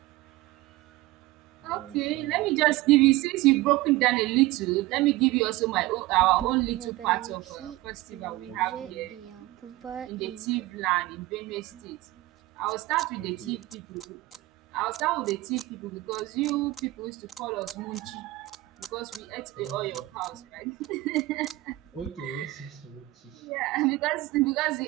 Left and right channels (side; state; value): left; quieter; 18.6 dB